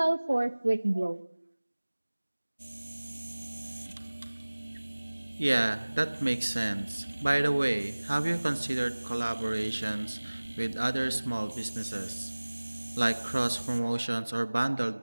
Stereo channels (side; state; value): both; inverted; correlation -1.00